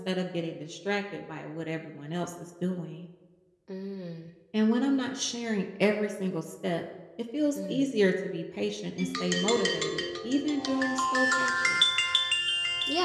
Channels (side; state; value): both; identical; correlation 1.00